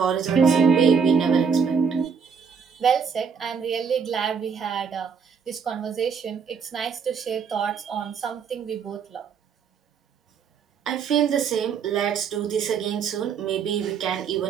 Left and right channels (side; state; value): left; quieter; 6.3 dB